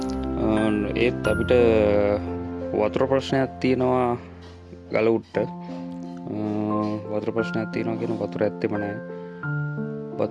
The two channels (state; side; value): identical; both; correlation 1.00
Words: ඒත් අපිට වතුර ප්‍රශ්නයක් තියෙනවා ගල උඩට. වතුර ප්‍රශ්නයක් තියෙනවා කියන වතුර ඇත්තෙම නැහැ.